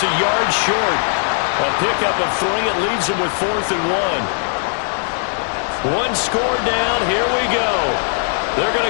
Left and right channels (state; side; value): silent; right; digital silence